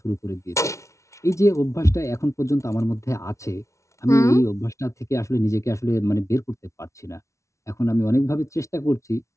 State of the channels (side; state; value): right; late; 0.14 ms